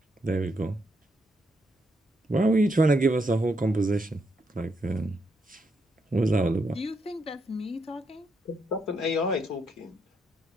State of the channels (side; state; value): both; normal; correlation 0.79